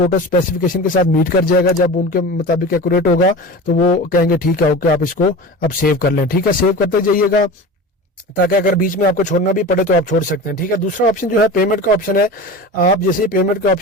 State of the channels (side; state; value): both; normal; correlation 0.32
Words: स्पेसिफिकेशन के साथ मीट कर जाएगा। जब उनके मुताबिक एक्यूरेट होगा तो वो कहेंगे ठीक है, ओके, आप इसको अब सेव कर लें। ठीक है, सेव करते जाइएगा, ताकि अगर बीच में आपको छोड़ना भी पड़े तो आप छोड़ सकते हैं। ठीक है, दूसरा ऑप्शन जो है पेमेंट का ऑप्शन है। आप जैसे ही पेमेंट के